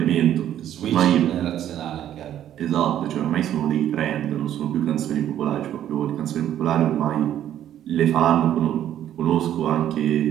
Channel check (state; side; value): quieter; left; 11.2 dB